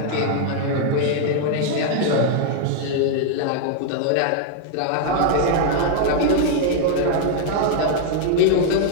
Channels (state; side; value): different; both; correlation -0.01